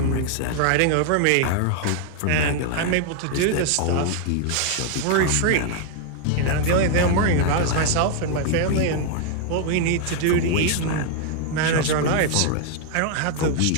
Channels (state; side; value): different; both; correlation 0.00